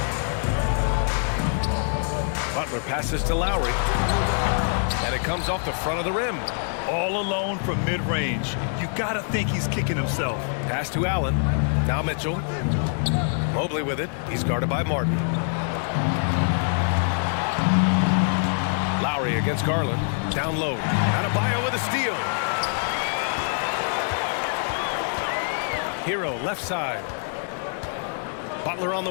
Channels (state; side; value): silent; right; 60 dB below the other